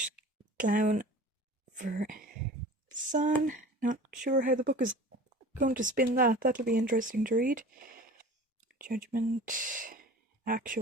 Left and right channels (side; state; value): both; normal; correlation 0.40